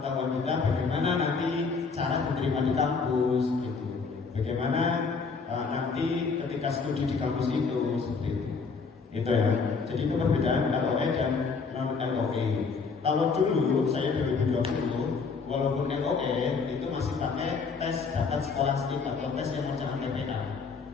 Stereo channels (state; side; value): quieter; right; 4.9 dB